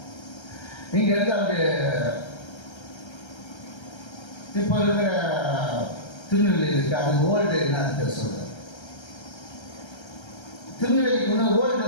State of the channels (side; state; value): right; late; 1.3 ms